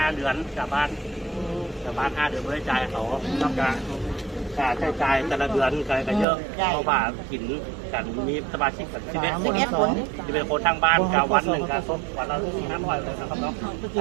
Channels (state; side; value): drops out; left; at 6.2 s